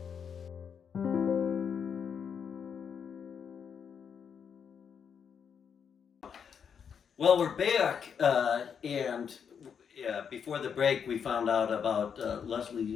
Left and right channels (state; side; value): quieter; right; 7.2 dB